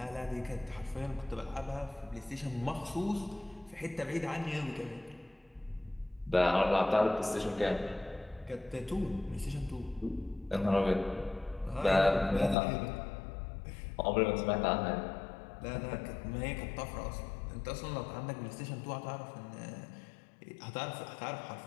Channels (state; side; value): drops out; right; at 12.6 s